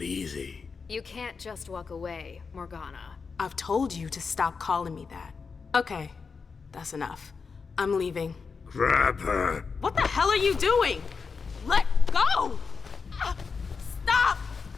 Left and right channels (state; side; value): quieter; right; 5.2 dB